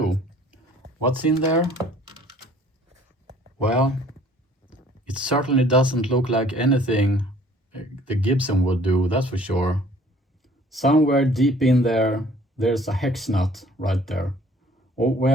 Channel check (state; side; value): normal; both; correlation 0.54